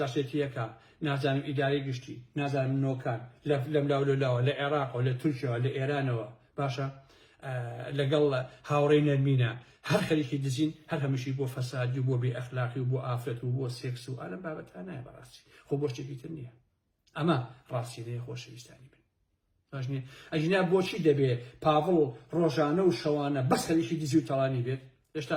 نازم اداري قشتي نازم نوكان لم لا العراق ولا تركيا ولا ايران باشا لقل هاورين المينا هر خليكي دزين هر همشي بو فساد وبو باخلاقي وبو افت وبو سكس وانا بابت انا براسي خو بوش تجيتني ئەمە ڕاستیەیە خۆشەویستانی بن. ئەژنا بۆچی دەبێ پاڤڵ ڕۆژانە و شەوانە بەس هەریشی دزی و تەڵانی بێت؟ هێشتا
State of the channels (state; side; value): identical; both; correlation 1.00